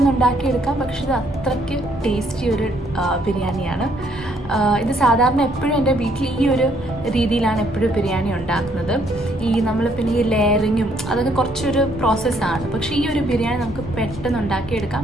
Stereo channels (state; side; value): normal; both; correlation 0.68